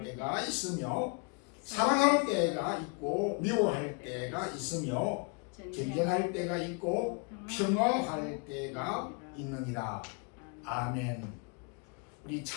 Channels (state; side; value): quieter; right; 34.2 dB